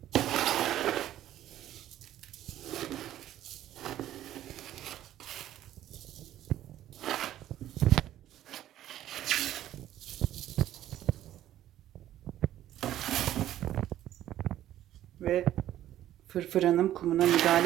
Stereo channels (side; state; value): left; quieter; 12.7 dB